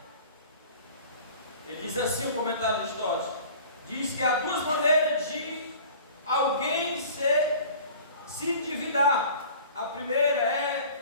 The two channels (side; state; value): both; inverted; correlation -0.44